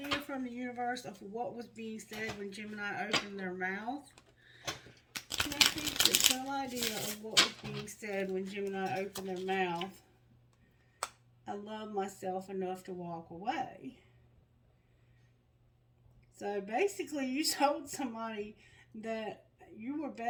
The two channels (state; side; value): identical; both; correlation 1.00